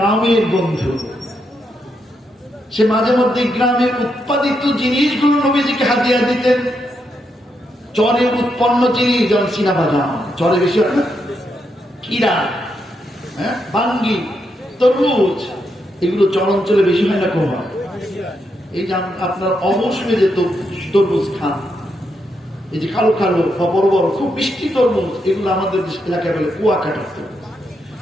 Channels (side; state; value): both; normal; correlation 0.81